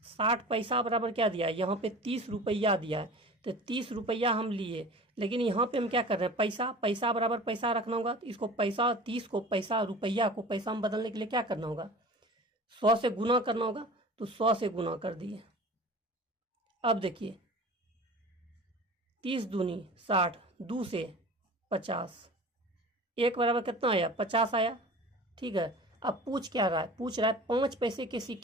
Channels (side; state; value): both; normal; correlation 0.39